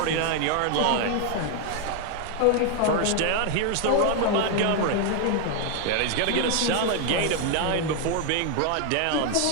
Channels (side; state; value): both; different; correlation 0.01